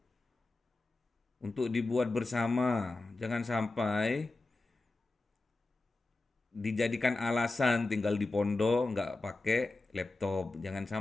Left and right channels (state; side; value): quieter; right; 3.2 dB